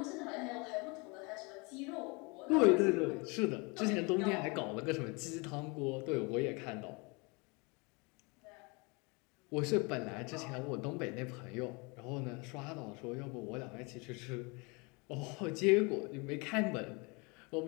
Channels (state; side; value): quieter; right; 29.3 dB